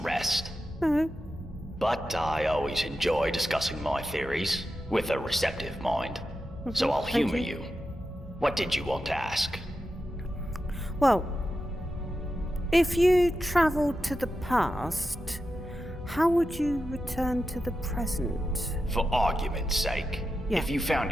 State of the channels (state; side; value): normal; both; correlation 0.90